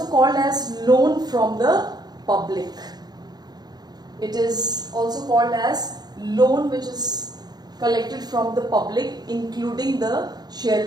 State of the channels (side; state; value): left; late; 0.20 ms